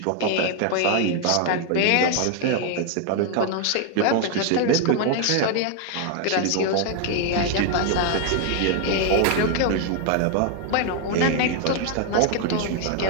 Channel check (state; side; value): different; both; correlation 0.00